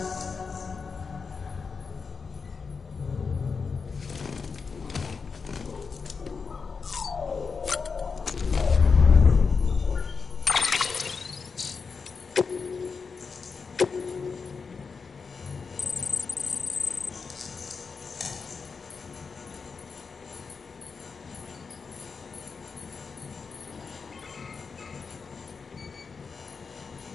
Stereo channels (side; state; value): right; quieter; 5.2 dB